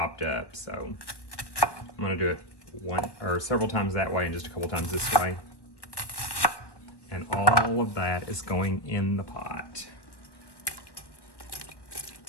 up. So I'm gonna do it one or several times that way and just a couple times this way. And all of that is going in the pot.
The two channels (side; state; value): right; late; 1.2 ms